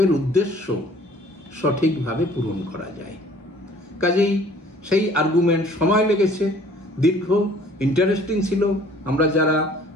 উদ্দেশ্য সঠিকভাবে পূরণ করা যায়। কাজেই সেই আর্গুমেন্ট সময় লেগেছে, দীর্ঘ, ইন্টারেস্টিং ছিল। আমরা যারা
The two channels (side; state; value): both; normal; correlation 0.54